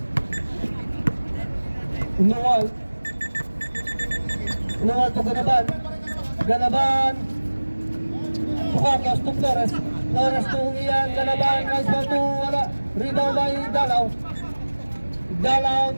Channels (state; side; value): inverted; both; correlation -1.00